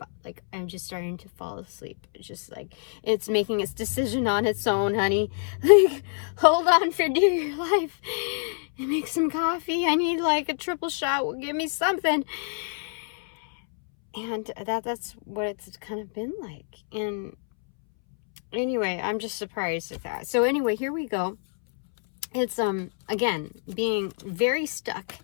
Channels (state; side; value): silent; right; 61 dB below the other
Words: Like, I'm just starting to fall asleep. It's just like, it's making its decision on its own, honey. Like, hold on for dear life. Make some coffee. I need like a triple shot. Give me something. And that's what it's kind of been like. And anyway, I'm just surprised at that. So anyway, here we go. It's, again, being very stuck.